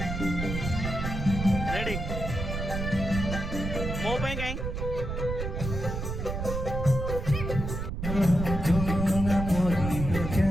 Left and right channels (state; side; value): noise; right; rumble, 4 dB below the sound